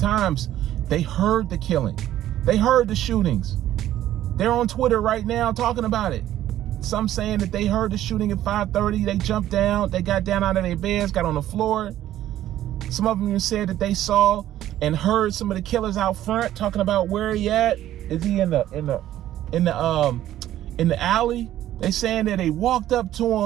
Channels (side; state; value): left; quieter; 12.8 dB